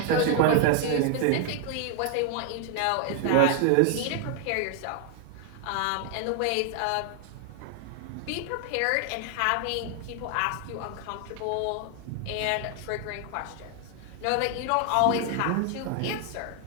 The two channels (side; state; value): both; different; correlation 0.00